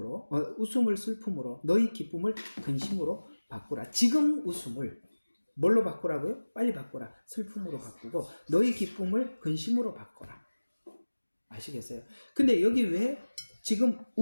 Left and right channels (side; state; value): both; inverted; correlation -1.00